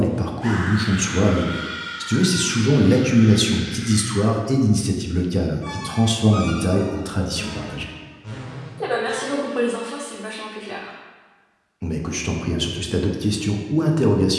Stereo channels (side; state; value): both; identical; correlation 1.00